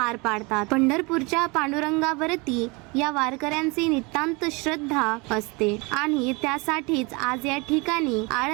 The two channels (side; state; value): left; quieter; 27.5 dB